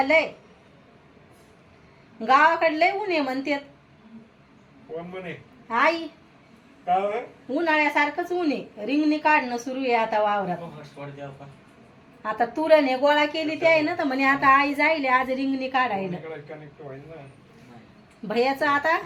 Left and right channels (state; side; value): identical; both; correlation 1.00